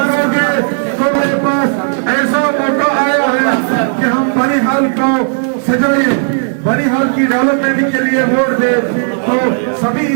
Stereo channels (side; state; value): left; silent; 67 dB below the other